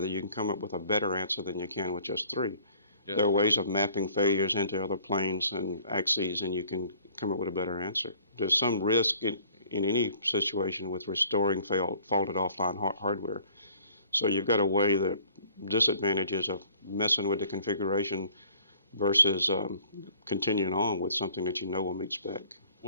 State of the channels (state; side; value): inverted; both; correlation -0.55